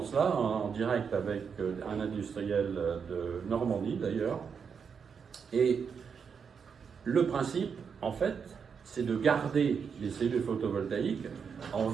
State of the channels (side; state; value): left; quieter; 6.4 dB